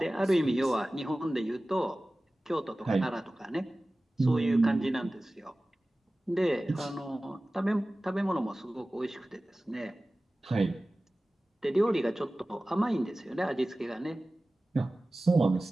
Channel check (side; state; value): both; normal; correlation 0.97